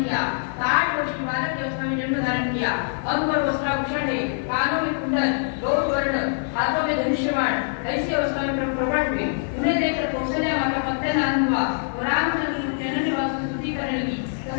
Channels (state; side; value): silent; right; digital silence